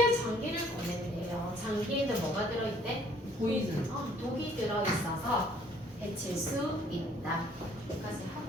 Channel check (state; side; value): normal; both; correlation 0.60